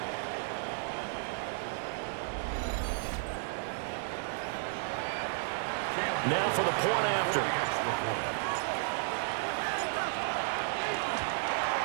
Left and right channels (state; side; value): silent; left; digital silence